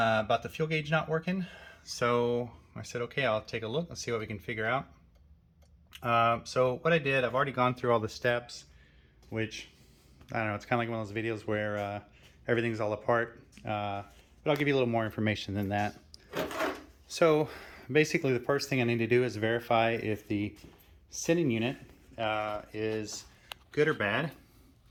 the fuel gauge not working. So I said, okay, I'll take a look. Let's see what we can figure out. So what I did, I've already gone through all the steps, which, I don't know, it's kind of like one of those videos where everything's all apart, but I'll give you a little more information than that. So basically the first thing I need to do is verify if the sending unit is good or bad.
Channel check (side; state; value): both; identical; correlation 1.00